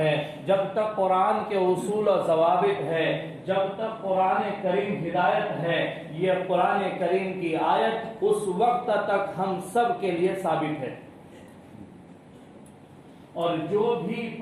جب تک قرآن کے اصول و ضوابط ہے، جب تک قرآن کریم ہدایت ہے، یہ قرآن کریم کی آیت اس وقت تک ہم سب کے لیے ثابت ہے. اور جو بھی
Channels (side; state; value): both; identical; correlation 1.00